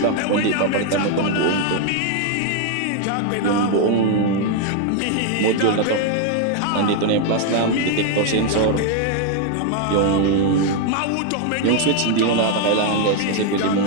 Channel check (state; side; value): different; both; correlation 0.00